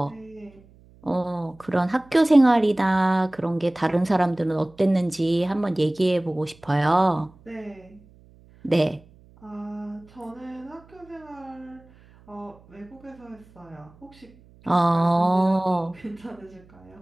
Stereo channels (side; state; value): right; noise; hum, 27 dB below the sound